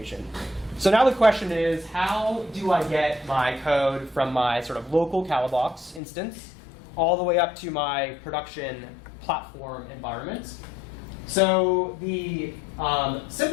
So now the question is, how do I get my code from my sort of local Calabox instance all the way up to my production platform environment? So the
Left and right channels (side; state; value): right; drops out; at 6.0 s